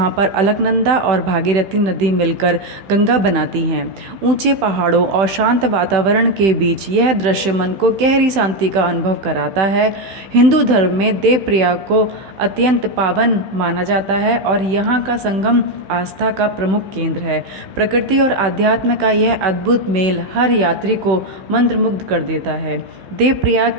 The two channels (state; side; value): late; left; 16 ms